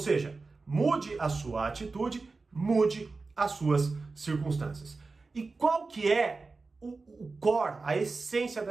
mude a sua atitude, mude as suas circunstâncias. E qual que é o core, a essência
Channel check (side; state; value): left; quieter; 3.9 dB